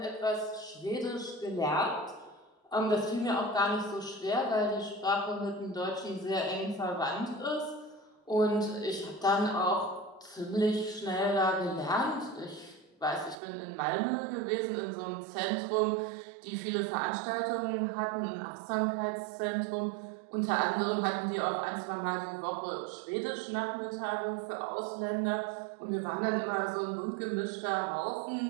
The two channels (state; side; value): drops out; left; at 13.4 s